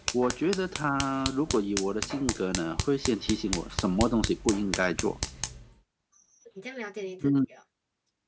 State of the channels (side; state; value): both; identical; correlation 1.00